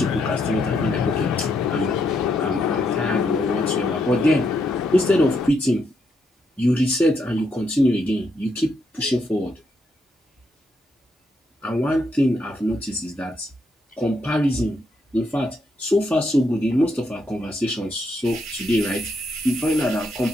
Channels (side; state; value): both; normal; correlation 0.78